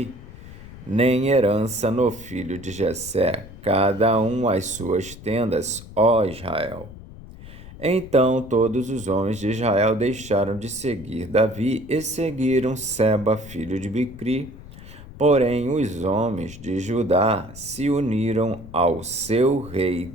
nem herança no filho de Jessé, cada um às suas tendas, ó Israel. Então todos os homens de Israel deixaram de seguir Davi e seguiram Seba, filho de Bicri. Porém, os homens de Judá se uniram ao seu rei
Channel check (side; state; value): left; noise; rumble, 16 dB below the sound